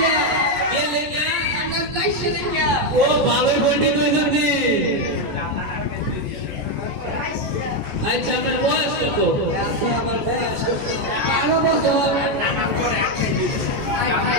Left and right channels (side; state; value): left; late; 14 ms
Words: ও ভালোই পণ্ডিত হয়েছেন। আচ্ছা আপনার বয়স কত? আমার বয়স 12 বছর।